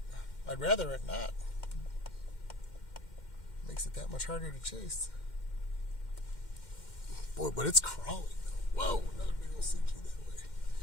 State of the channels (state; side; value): late; right; 2.1 ms